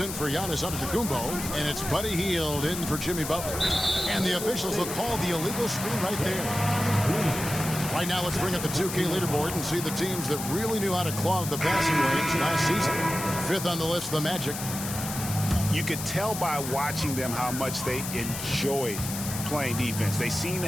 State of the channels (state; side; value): noise; left; hiss, 7 dB below the sound